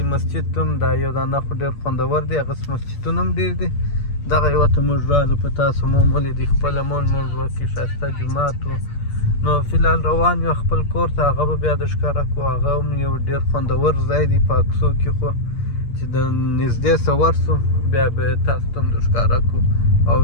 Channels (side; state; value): right; late; 8.6 ms